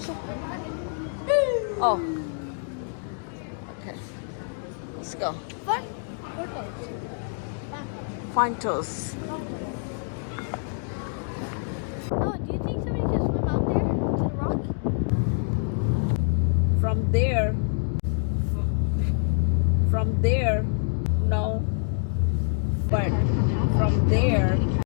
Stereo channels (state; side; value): silent; right; 58 dB below the other